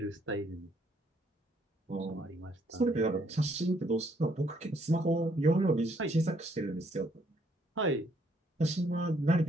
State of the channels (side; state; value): both; normal; correlation 0.68